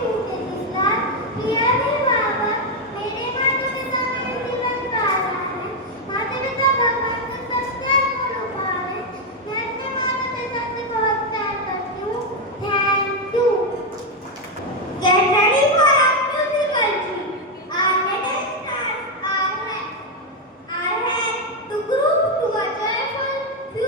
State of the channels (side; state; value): both; normal; correlation 0.04